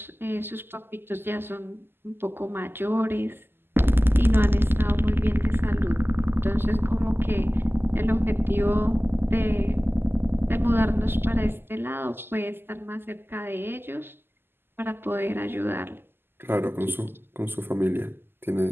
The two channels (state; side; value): late; left; 0.11 ms